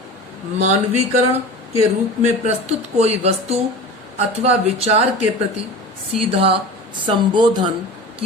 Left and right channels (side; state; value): both; normal; correlation 0.34